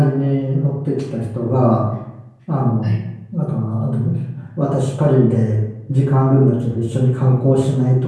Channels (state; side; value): identical; both; correlation 1.00